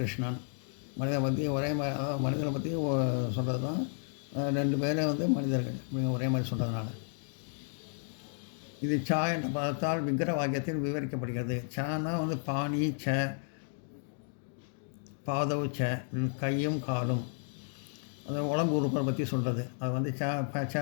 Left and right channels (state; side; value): silent; right; 56 dB below the other